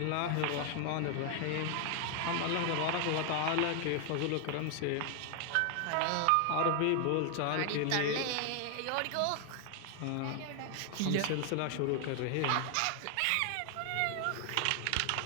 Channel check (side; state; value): both; different; correlation 0.00